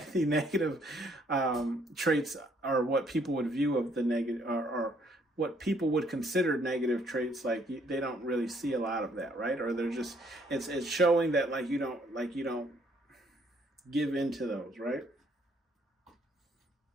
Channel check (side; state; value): both; normal; correlation 0.66